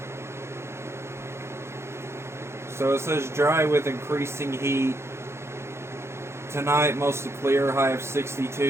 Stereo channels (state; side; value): late; left; 0.13 ms